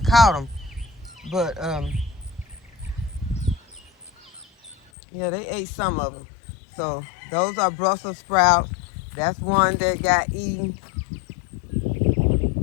caught them. But yeah, they ate some of them. So those are Brussels sprouts. That's one that got eaten.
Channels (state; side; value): drops out; right; at 4.8 s